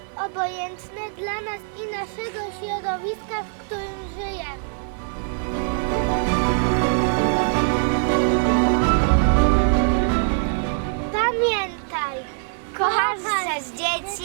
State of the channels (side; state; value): left; silent; 64 dB below the other